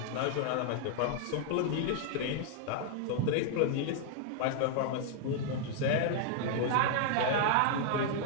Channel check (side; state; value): both; different; correlation 0.00